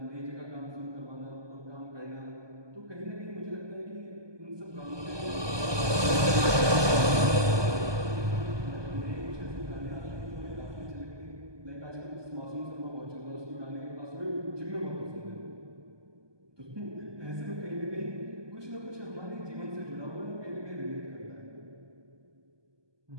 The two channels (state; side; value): late; left; 1.2 ms